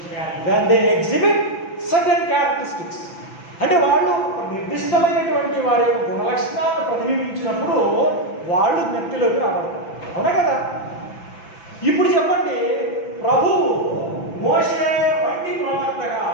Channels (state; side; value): late; right; 6.0 ms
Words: They exhibit certain characteristics. అంటే వాళ్ళు నిర్దిష్టమైనటువంటి వారి యొక్క గుణలక్షణాలను ప్రతిబింబించినప్పుడు వాళ్ళు వ్యక్తిలోకి రాబడతారు. అవునా కదా? ఇప్పుడు చెప్పండి, ప్రభువు మోషే వంటి ప్రవక్తగా